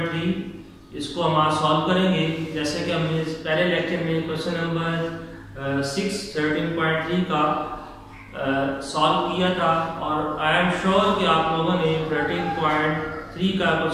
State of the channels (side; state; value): both; identical; correlation 1.00